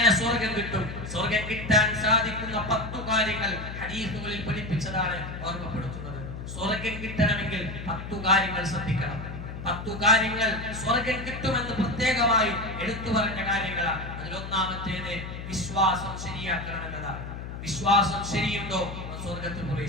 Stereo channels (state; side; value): noise; left; hum, 9 dB below the sound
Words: സ്വർഗ്ഗം കിട്ടും? സ്വർഗ്ഗം കിട്ടാൻ സാധിക്കുന്ന 10 കാര്യങ്ങൾ ഹദീസുകളിൽ പഠിപ്പിച്ചതാണ് ഓർമ്മപ്പെടുത്തുന്നത്. സ്വർഗ്ഗം കിട്ടണമെങ്കിൽ 10 കാര്യങ്ങൾ ശ്രദ്ധിക്കണം. 10 കാര്യങ്ങൾ സ്വർഗ്ഗം കിട്ടുമെന്ന് പ്രത്യേകമായി എടുത്തു പറഞ്ഞ കാര്യങ്ങളാണ്. അതിലൊന്നാമത്തേത് വിശ്വാസം ശരിയാക്കണം എന്നതാണ്. വിശ്വാസം ശരിയുണ്ടോ സ്വർഗ്ഗത്തിൽ